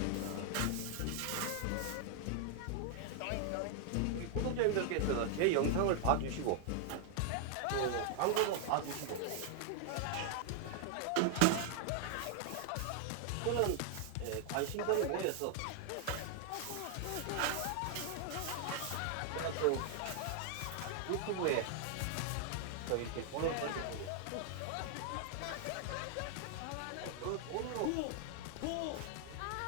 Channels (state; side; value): different; both; correlation 0.00